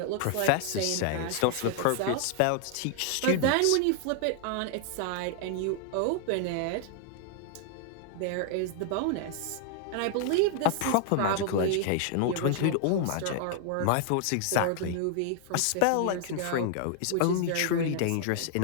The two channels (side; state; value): both; different; correlation 0.00